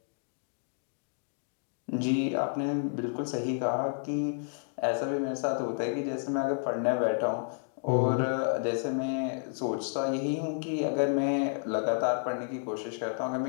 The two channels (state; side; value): silent; right; digital silence